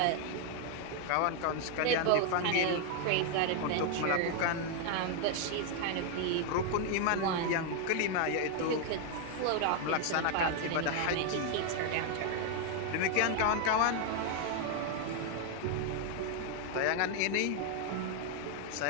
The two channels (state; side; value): different; both; correlation 0.00